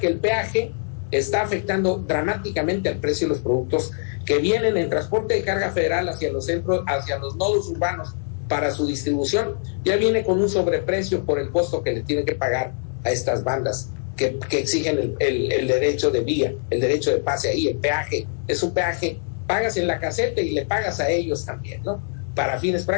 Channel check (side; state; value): right; silent; 63 dB below the other